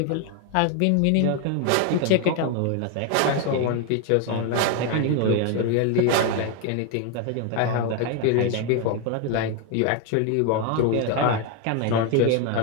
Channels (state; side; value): different; both; correlation 0.01